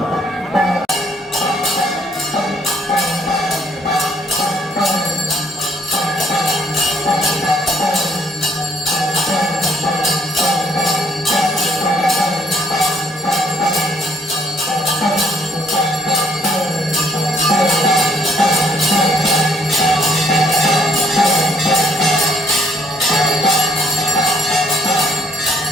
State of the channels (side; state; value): both; normal; correlation 0.65